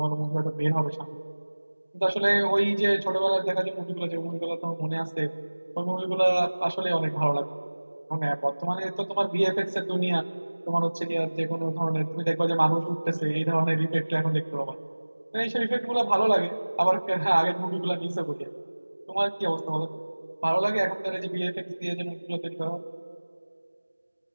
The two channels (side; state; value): both; inverted; correlation -1.00